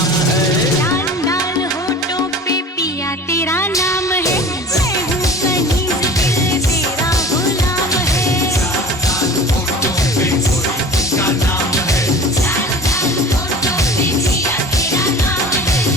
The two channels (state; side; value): normal; both; correlation 0.39